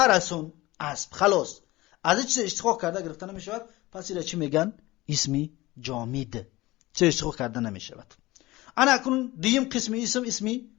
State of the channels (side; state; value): right; quieter; 19.4 dB